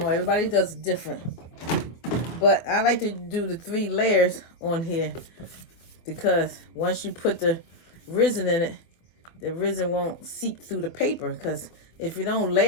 everybody does it different. But I like to do the 3 layers on here because once you put the resin in it, the resin won't seep through the paper. Because if you don't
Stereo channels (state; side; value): late; right; 24 ms